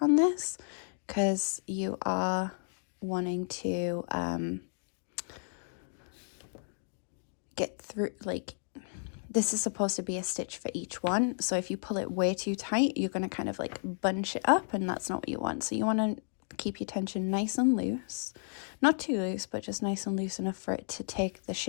this, because you are wanting to get through, like, this is supposed to be a stitch for each one. So if you pull it way too tight, you're going to kind of like bunch it up, and that's not what you want. So you want to keep your tension nice and loose, not too loose, but just nice and loose enough for it to take the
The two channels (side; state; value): right; silent; 56 dB below the other